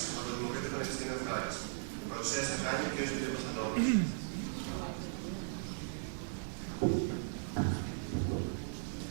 από το Δημοκρατικό Πανεπιστήμιο Χάρης. Παρουσίασε κάνει ο κ. Λιούκας Αντώνιος.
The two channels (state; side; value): silent; left; digital silence